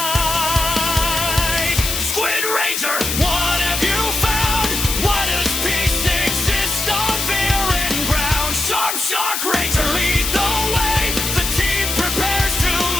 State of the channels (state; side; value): noise; left; hiss, 2 dB below the sound